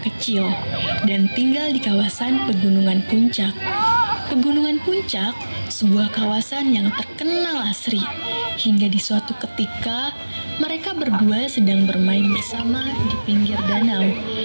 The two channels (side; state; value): both; inverted; correlation -1.00